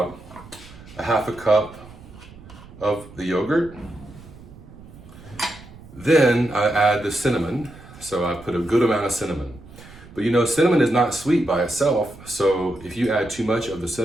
a half a cup of the yogurt. Then I add the cinnamon. So I put a good amount of cinnamon. But you know, cinnamon is not sweet by itself. So if you add too much of the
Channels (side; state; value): right; noise; rumble, 19 dB below the sound